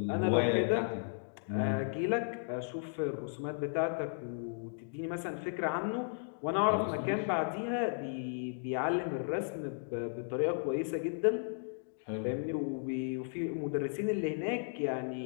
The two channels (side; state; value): right; silent; digital silence